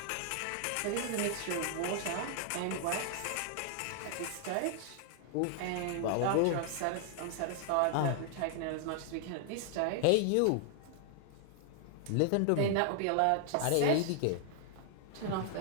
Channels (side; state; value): both; different; correlation 0.00